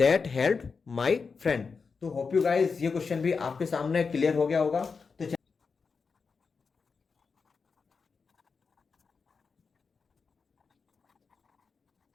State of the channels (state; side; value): quieter; right; 5.1 dB